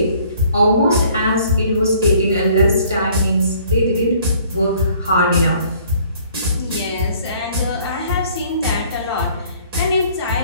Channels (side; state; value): both; inverted; correlation -0.57